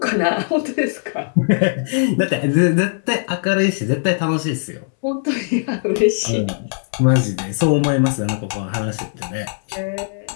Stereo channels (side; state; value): right; silent; 66 dB below the other